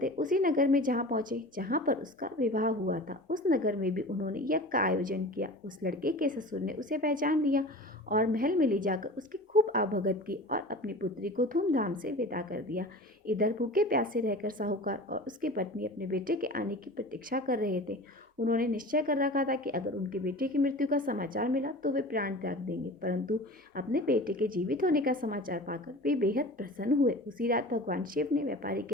उसी नगर में जहाँ पहुंचे जहाँ पर उसका विवाह हुआ था। उस नगर में भी उन्होंने यज्ञ का आयोजन किया। उस लड़के के ससुर ने उसे पहचान लिया और महल में ले जाकर उसकी खूब आवभगत की और अपनी पुत्री को धूमधाम से विदा कर दिया। इधर भूखे प्यासे रहकर साहूकार और उसकी पत्नी अपने बेटे के आने की प्रतीक्षा कर रहे थे। उन्होंने निश्चय कर रखा था कि अगर उनके बेटे की मृत्यु का समाचार मिला तो वे प्राण त्याग देंगे, परंतु अपने बेटे के जीवित होने का समाचार पाकर वे बेहद प्रसन्न हुए। उसी रात भगवान शिव ने व्यापारी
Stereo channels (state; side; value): normal; both; correlation 0.37